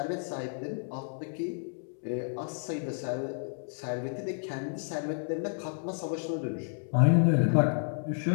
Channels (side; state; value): right; silent; digital silence